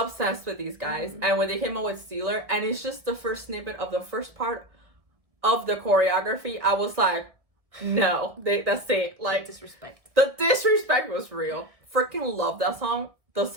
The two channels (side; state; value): left; late; 1.7 ms